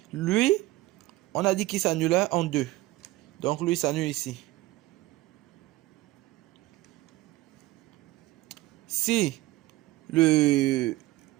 Lui, on a dit qu'il s'annulait en 2. Donc, lui s'annule ici. Si le...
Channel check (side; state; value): left; quieter; 17.9 dB